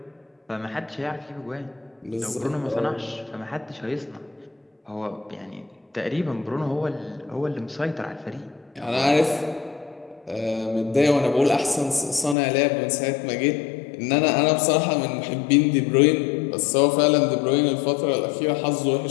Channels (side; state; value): right; drops out; at 12.4 s